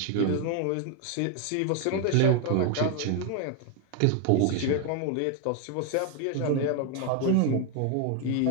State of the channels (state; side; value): different; both; correlation 0.01